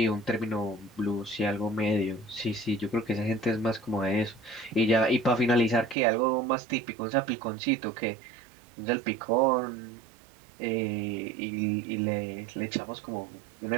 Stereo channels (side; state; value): left; drops out; at 6.0 s